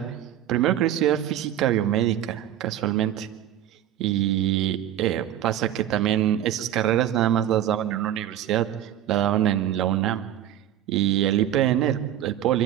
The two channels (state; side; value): quieter; left; 11.5 dB